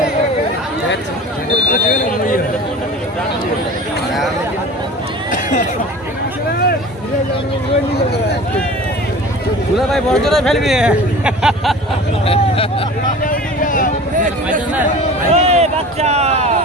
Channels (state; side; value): normal; both; correlation 0.39